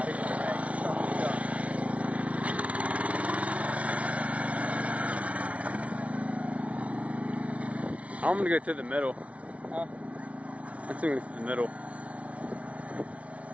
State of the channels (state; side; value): late; left; 0.065 ms